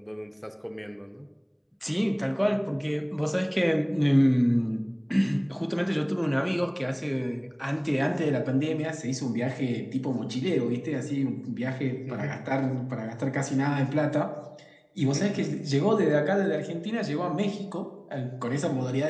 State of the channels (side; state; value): both; identical; correlation 1.00